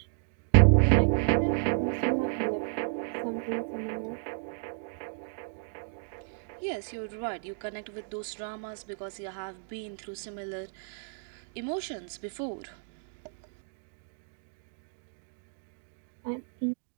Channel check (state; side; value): silent; left; digital silence